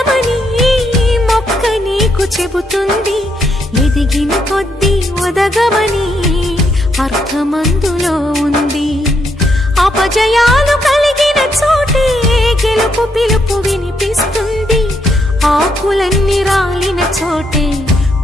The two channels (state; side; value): normal; both; correlation 0.76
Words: మొక్క నీకు చెబుతుంది, ఎదిగిన కొద్దీ ఒదగమని అర్థమందులో ఉంది. అపజయాలు కలిగిన చోటే గెలుపు పిలుపు వినిపిస్తుంది, ఆకులన్నీ రాలిన చోటే